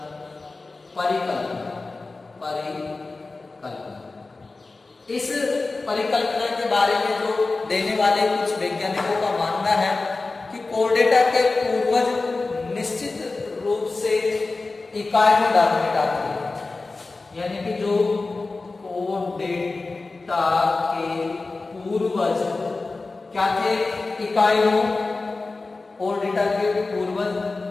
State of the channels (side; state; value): right; quieter; 3.6 dB